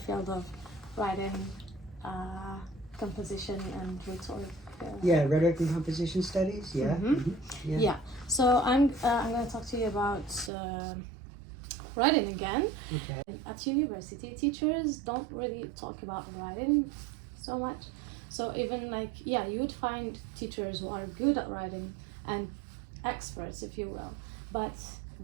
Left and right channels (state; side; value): drops out; left; at 10.5 s